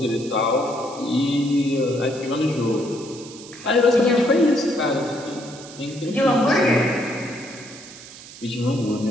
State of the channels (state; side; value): noise; right; hiss, 17 dB below the sound